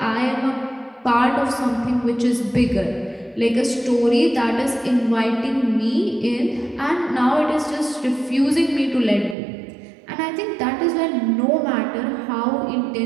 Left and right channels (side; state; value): left; drops out; at 9.3 s